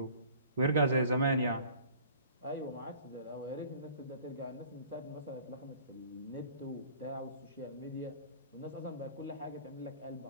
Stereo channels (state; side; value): inverted; both; correlation -0.49